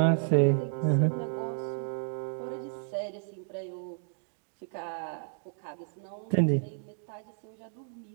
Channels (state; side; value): silent; left; digital silence